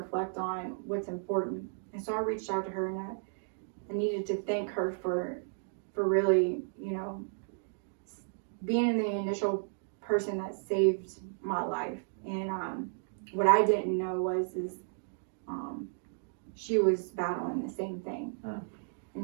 on what's important. And so I reached out to her, and I needed to thank her for really, being the initial person that saved my life. And what I didn't know is she was battling the same thing.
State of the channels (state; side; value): silent; left; digital silence